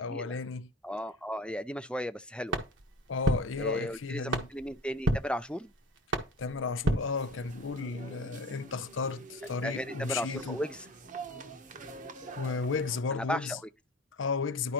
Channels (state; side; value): normal; both; correlation 0.39